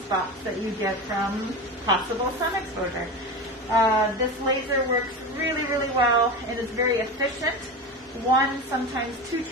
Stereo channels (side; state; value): both; normal; correlation 0.24